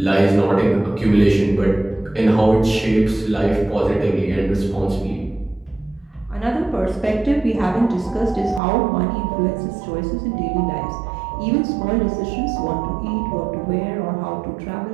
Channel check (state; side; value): drops out; left; at 8.6 s